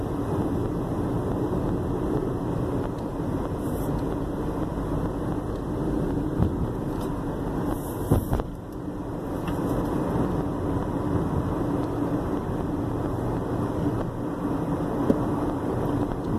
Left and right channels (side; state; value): both; identical; correlation 1.00